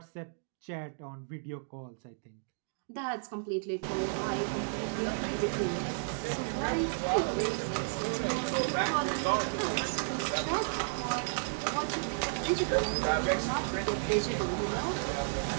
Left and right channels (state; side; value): silent; left; digital silence